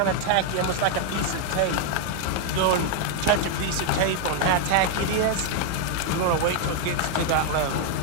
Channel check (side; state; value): both; different; correlation 0.01